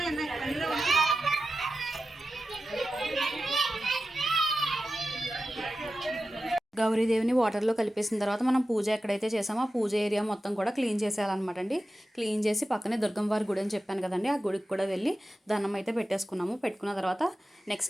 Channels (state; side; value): normal; both; correlation 0.93